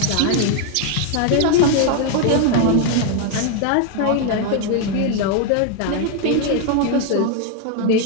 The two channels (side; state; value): both; different; correlation 0.01